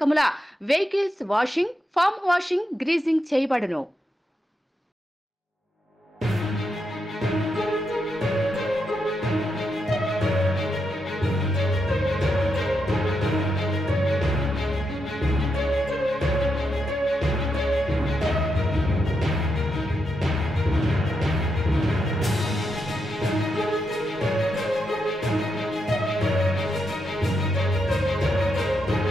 vehicles washing, foam washing, greasing చేయబడును.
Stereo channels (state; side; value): normal; both; correlation 0.83